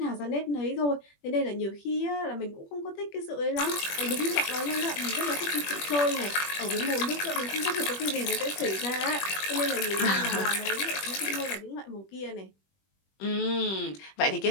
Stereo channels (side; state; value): right; late; 21 ms